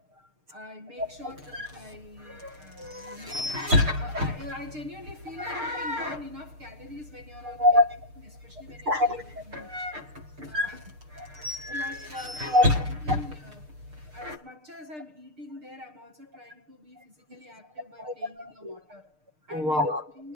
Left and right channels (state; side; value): late; left; 6.6 ms